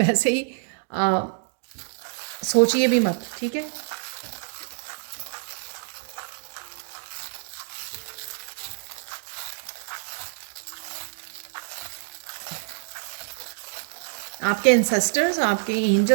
ही सोचिए भी मत। ठीक है, आपके एंसेस्टर्स, आपके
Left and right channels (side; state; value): left; silent; digital silence